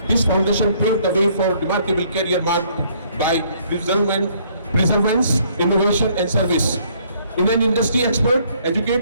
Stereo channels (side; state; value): both; inverted; correlation -0.64